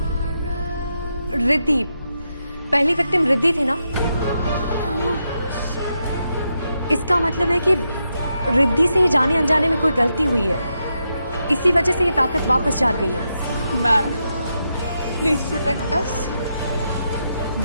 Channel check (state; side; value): inverted; both; correlation -0.84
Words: रिद्धि, पहली विक्टिम रिद्धि थी ना? इसका मतलब है कि रिद्धि से जाने अनजाने में कोई गलती हुई है, इसी वजह से ये ताकत वापस जाग गई है। Ma'am, please protect us.